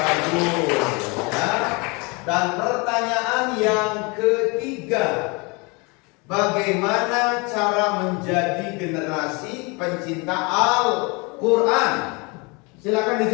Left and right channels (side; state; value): right; quieter; 29.0 dB